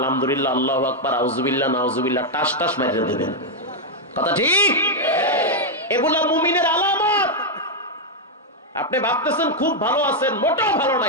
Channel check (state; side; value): normal; both; correlation -0.01